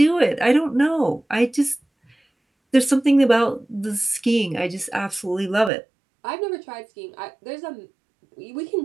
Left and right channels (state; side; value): drops out; left; at 5.7 s